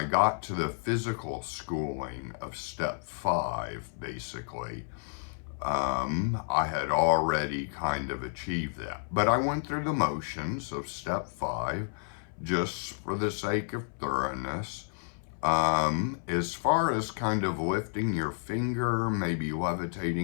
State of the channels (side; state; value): right; silent; 57 dB below the other